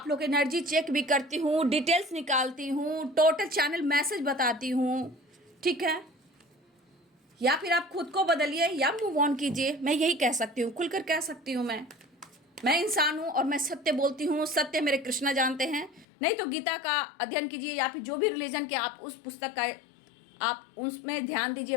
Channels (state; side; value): drops out; right; at 16.1 s